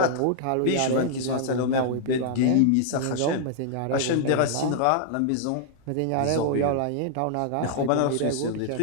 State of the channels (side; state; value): both; different; correlation -0.01